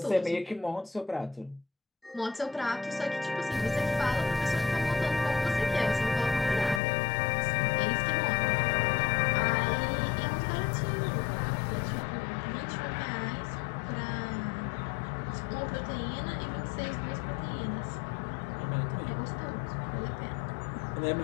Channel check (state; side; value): drops out; right; at 6.8 s